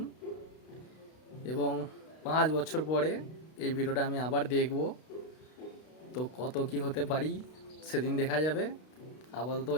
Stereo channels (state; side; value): late; right; 32 ms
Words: এবং 5 বছর পরে এই ভিডিওটা আমি আবার দেখব। তো কত কি হতে পারি সেদিন দেখা যাবে। আপাতত